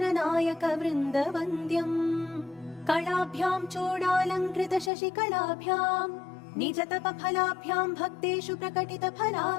वृन्दवन्द्यम् कलाभ्याम् चूडालङ्कृत शशिकलाभ्याम् निजतपफलाभ्याम् भक्तेषु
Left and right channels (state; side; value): drops out; right; at 4.9 s